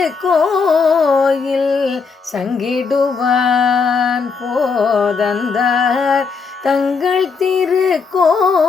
சங்கிடுவான் போதந்தார். தங்கள்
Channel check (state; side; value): quieter; right; 5.0 dB